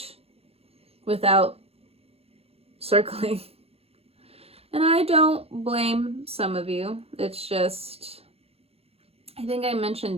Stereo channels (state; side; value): late; left; 0.29 ms